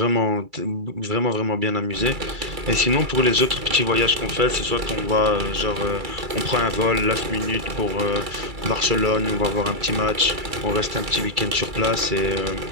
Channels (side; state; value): left; late; 2.3 ms